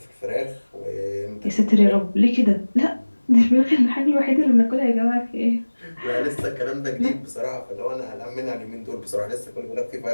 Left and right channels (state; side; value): inverted; both; correlation -1.00